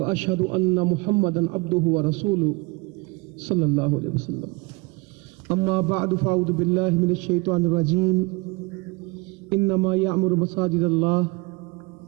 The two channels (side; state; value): left; quieter; 26.1 dB